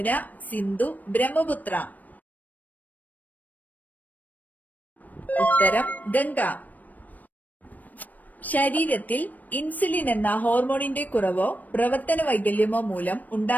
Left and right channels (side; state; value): right; late; 0.081 ms